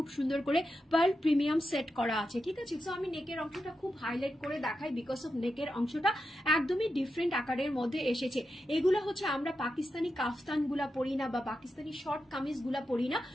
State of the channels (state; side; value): normal; both; correlation 0.88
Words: সুন্দর করে পার্ল প্রিমিয়াম সেট করা আছে, ঠিক আছে। সো আমি নেকের অংশটা খুব হাইলাইট করে দেখাই বিকজ অফ নেকের অংশটা একদমই ডিফারেন্ট আকারের মধ্যে এসেছে। এগুলো হচ্ছে আমরা পাকিস্তানি কাফতান গুলা পরি না, বা পাকিস্তানি শর্ট কামিজ গুলা পরি না।